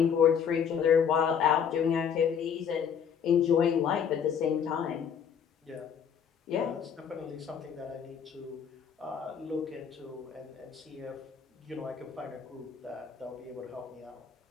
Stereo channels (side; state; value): right; quieter; 7.5 dB